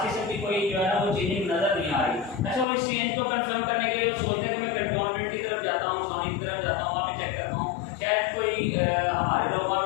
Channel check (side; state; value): right; drops out; at 2.7 s